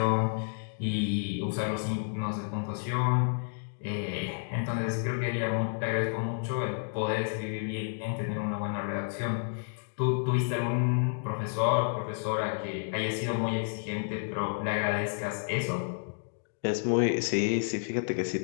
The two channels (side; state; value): right; silent; digital silence